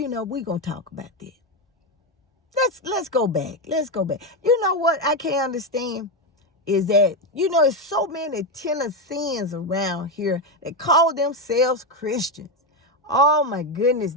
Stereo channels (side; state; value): both; normal; correlation 0.09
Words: know, we're going to talk about this. Let's go back. Let's go back. You know what I can't understand is that, you know, there's so many Tennesseans around here that call themselves Christians. Oh, my goodness.